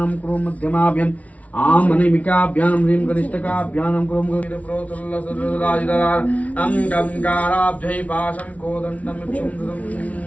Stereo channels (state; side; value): late; right; 0.067 ms